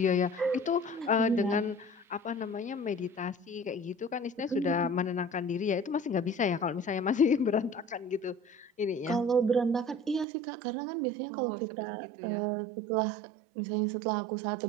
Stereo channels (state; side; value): drops out; left; at 10.2 s